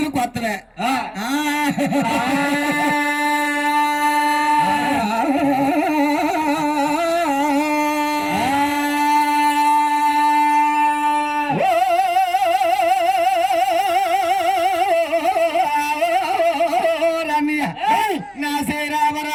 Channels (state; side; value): identical; both; correlation 1.00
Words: కొత్తవే నా శ్రీ రామ